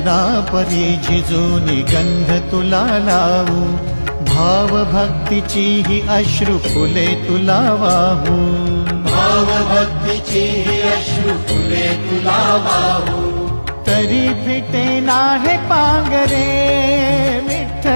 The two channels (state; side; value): inverted; both; correlation -1.00